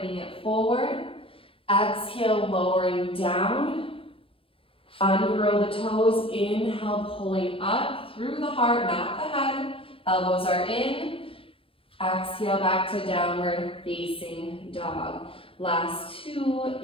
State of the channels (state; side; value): late; right; 0.26 ms